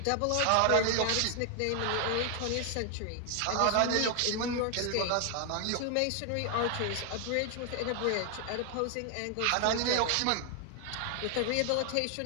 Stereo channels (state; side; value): different; both; correlation 0.00